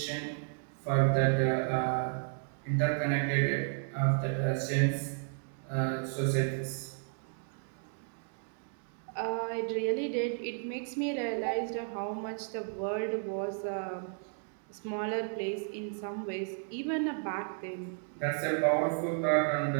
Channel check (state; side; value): silent; left; 56 dB below the other